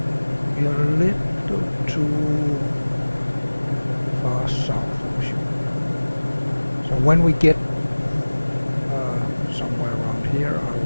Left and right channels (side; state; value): both; inverted; correlation -1.00